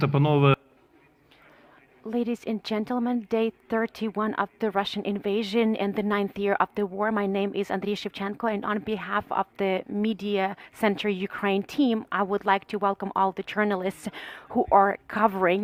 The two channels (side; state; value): both; identical; correlation 1.00